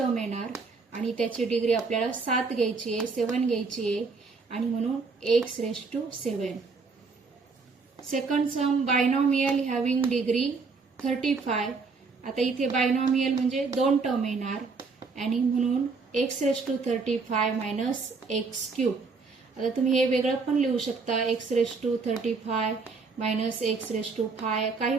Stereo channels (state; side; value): quieter; left; 4.5 dB